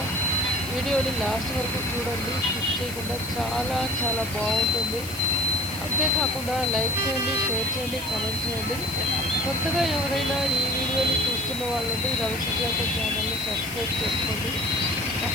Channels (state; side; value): noise; left; hiss, 11 dB below the sound